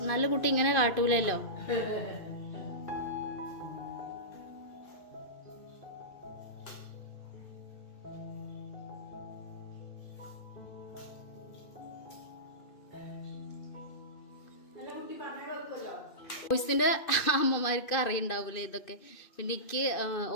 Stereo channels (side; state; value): right; late; 2.5 ms